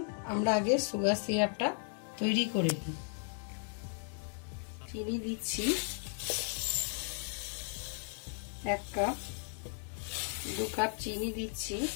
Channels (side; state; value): right; silent; 54 dB below the other